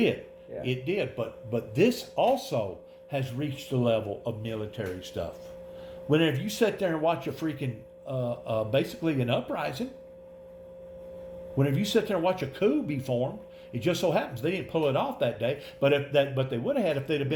Yeah. It did. But this also has reached the level of military stuff. Whenever you sit there and watch a freaking basically an uprising, whenever you sit there and watch a coup be formed, it just so happens they didn't pull it off that day. But they would have had if they'd have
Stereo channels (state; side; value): identical; both; correlation 1.00